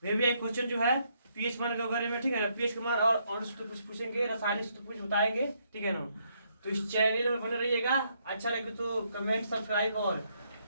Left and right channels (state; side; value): inverted; both; correlation -0.73